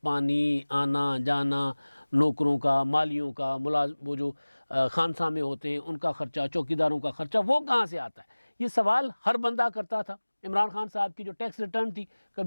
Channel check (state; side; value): inverted; both; correlation -1.00